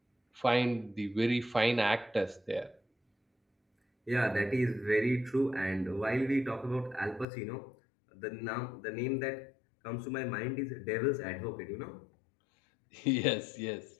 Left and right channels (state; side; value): drops out; right; at 7.2 s